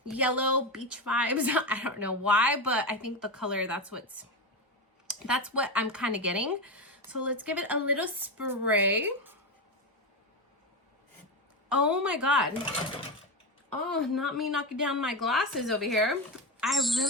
Yellow beach vibes. I don't know why, but I think the color, that's what I'm kind of getting. So let's give it a little spray. Oh my god. Oh, not me knocking down my glasses over here. I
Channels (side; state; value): both; normal; correlation 0.15